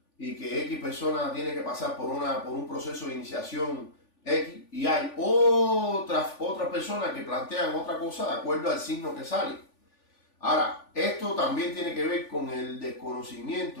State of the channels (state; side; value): late; right; 3.4 ms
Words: y que X persona tiene que pasar por un proceso de iniciación X, y hay otras personas que plantean otra cosa de acuerdo al signo que sale. Ahora, esto también tiene que ver con el